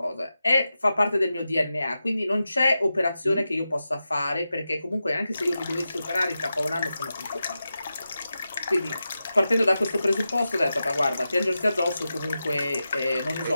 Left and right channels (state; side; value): inverted; both; correlation -0.91